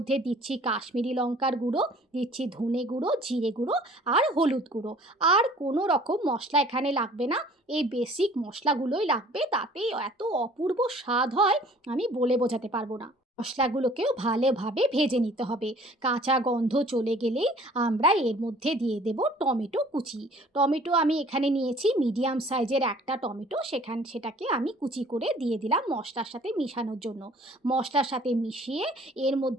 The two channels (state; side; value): normal; both; correlation 0.52